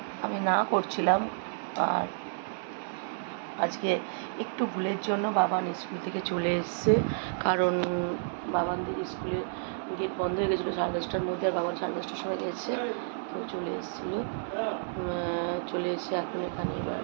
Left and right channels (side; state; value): left; silent; digital silence